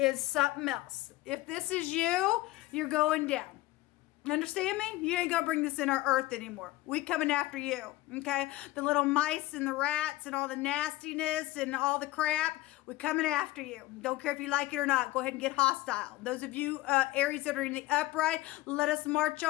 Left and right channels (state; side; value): quieter; right; 18.1 dB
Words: something else. If this is you, you're going down. Understand me? You ain't gonna bring this in our earth anymore. We coming after you, okay? The little mice and the rats and all the nastiness and all the crap, we coming after you. Don't care if you like it or not. Go ahead and get hostile. Those of you Aries that are in the upright, let us march